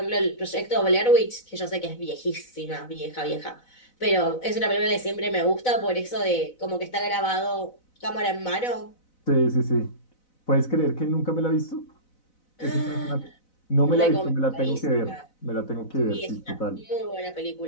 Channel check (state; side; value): late; right; 4.0 ms